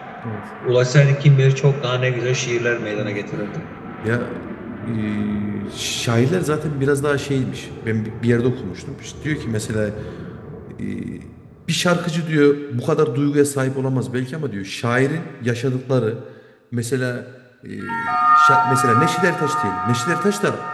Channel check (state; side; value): identical; both; correlation 1.00